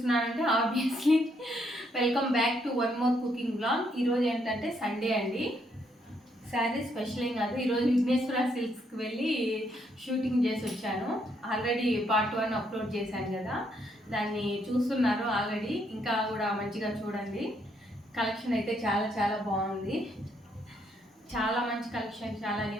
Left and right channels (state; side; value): normal; both; correlation 0.73